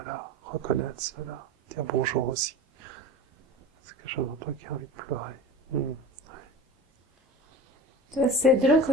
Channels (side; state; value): both; normal; correlation 0.33